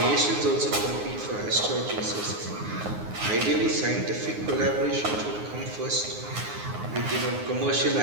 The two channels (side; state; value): left; late; 9.6 ms